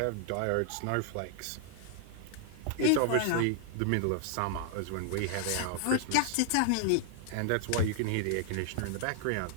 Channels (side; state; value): both; different; correlation 0.00